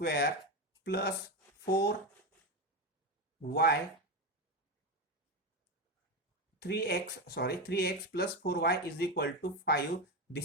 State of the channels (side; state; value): both; normal; correlation 0.14